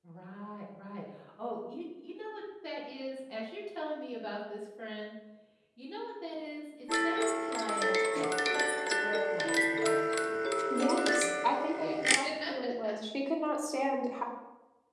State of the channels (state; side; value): identical; both; correlation 1.00